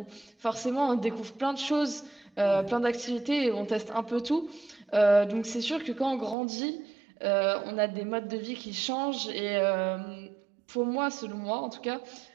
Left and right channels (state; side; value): drops out; left; at 6.4 s